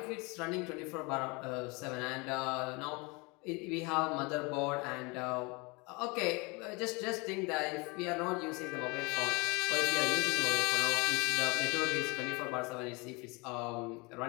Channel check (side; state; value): right; quieter; 27.7 dB